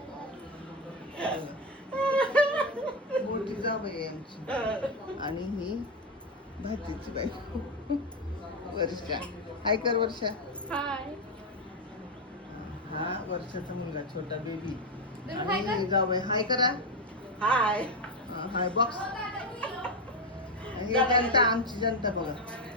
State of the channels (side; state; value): both; normal; correlation 0.09